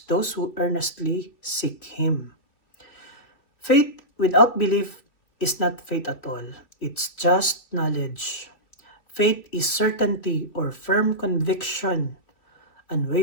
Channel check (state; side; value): late; right; 2.8 ms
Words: those who earnestly seek Him." Faith without belief is not faith at all. It's just knowledge. Faith is certainty or firm conviction,